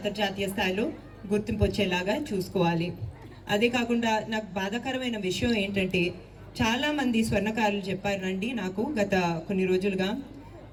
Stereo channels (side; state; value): both; identical; correlation 1.00